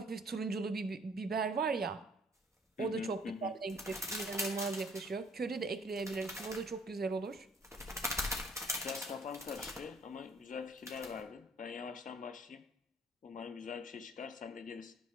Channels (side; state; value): both; normal; correlation 0.59